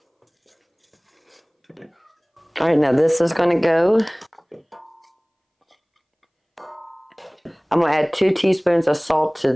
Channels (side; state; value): both; identical; correlation 1.00